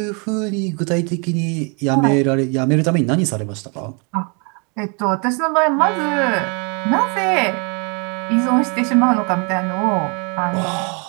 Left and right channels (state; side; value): quieter; left; 34.7 dB